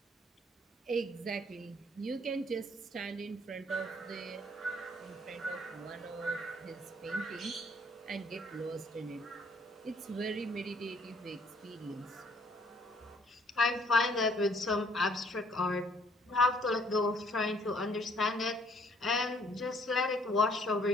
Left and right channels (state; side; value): normal; both; correlation 0.62